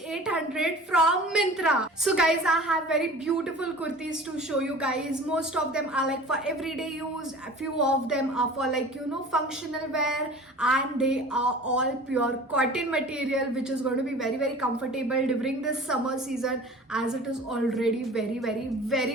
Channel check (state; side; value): normal; both; correlation 0.42